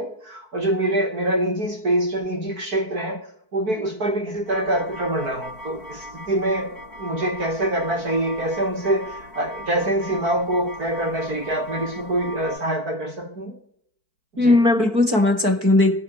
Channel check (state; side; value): late; left; 4.5 ms